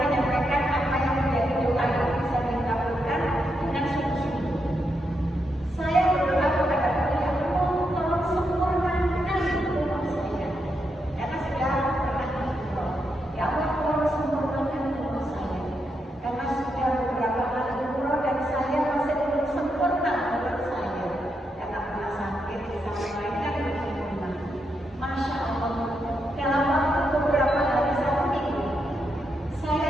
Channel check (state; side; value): normal; both; correlation 0.82